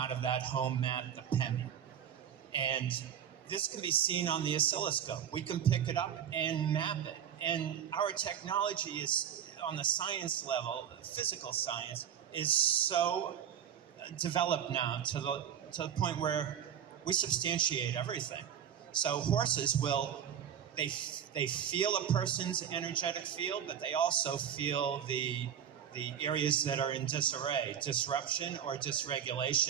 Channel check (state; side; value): quieter; left; 9.1 dB